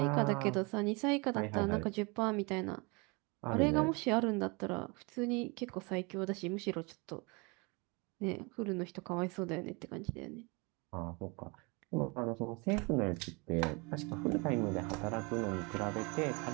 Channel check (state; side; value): quieter; left; 29.0 dB